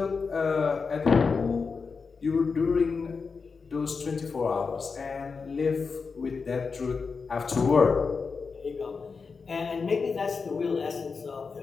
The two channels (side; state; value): right; quieter; 5.0 dB